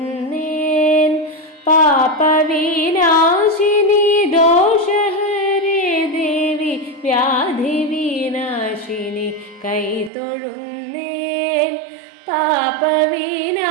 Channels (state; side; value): drops out; left; at 10.1 s